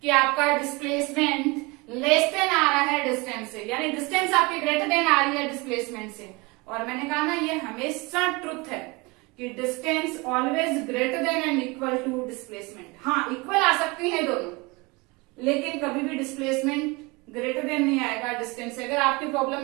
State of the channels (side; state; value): left; quieter; 25.7 dB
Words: कि आपका डिस्प्लेसमेंट लेस देन आ रहा है डिस्टेंस से, यानी डिस्टेंस आपकी ग्रेटर देन आ रही है डिस्प्लेसमेंट से। और मैंने कहा ना ये हमेशा ट्रुथ है कि distance always greater than and equal to displacement. हाँ, इक्वल आ सकती है दोनों, लेकिन कभी भी डिस्प्लेसमेंट ग्रेटर देन नहीं आएगा डिस्टेंस से। अगर आपकी प्रॉब्लम